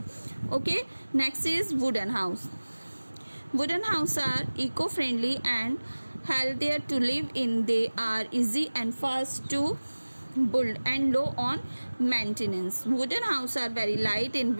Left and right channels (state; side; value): inverted; both; correlation -1.00